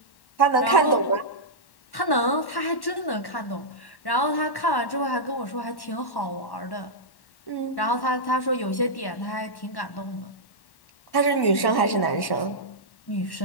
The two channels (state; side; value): late; right; 1.1 ms